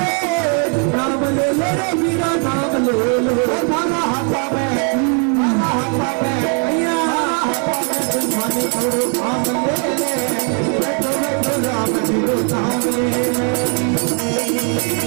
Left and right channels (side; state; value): left; quieter; 38.9 dB